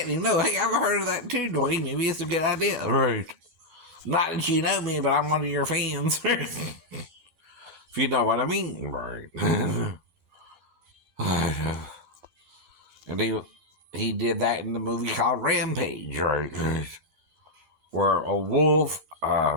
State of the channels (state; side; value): late; left; 11 ms